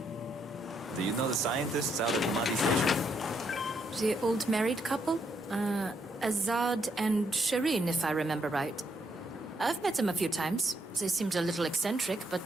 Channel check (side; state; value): both; normal; correlation 0.76